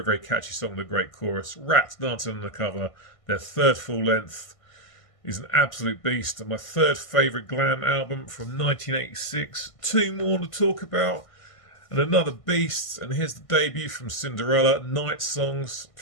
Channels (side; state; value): right; late; 1.5 ms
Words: very catchy song with a great chorus. Ratt, Dancing on the Cover, their third full length, is an absolute beast. And my third favourite Glam album from 1986. 2 more to talk about. And another beast. And here's the debut from Cinderella, Night Songs.